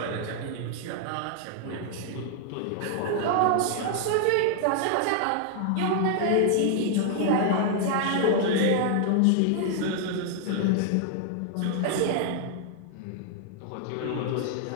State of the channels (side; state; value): both; different; correlation 0.00